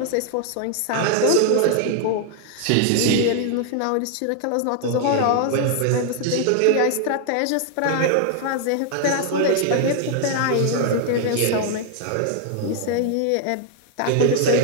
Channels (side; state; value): both; different; correlation 0.00